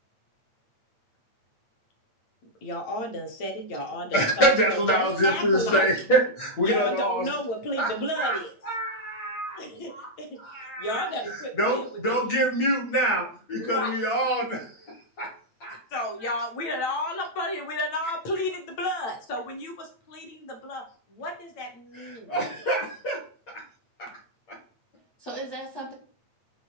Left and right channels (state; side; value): late; right; 8.6 ms